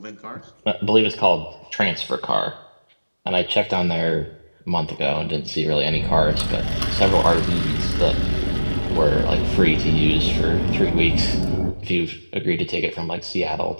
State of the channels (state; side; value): inverted; both; correlation -1.00